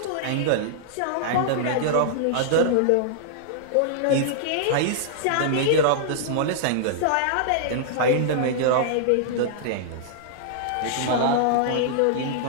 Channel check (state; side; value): different; both; correlation -0.01